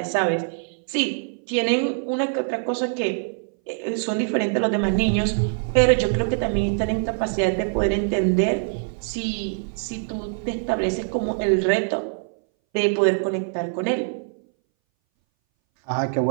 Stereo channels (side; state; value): left; silent; 61 dB below the other